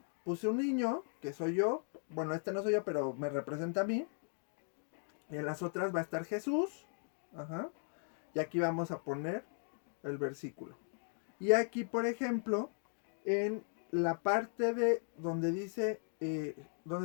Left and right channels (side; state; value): right; silent; 53 dB below the other